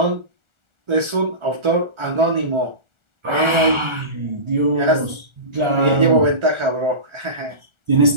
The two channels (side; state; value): left; late; 1.4 ms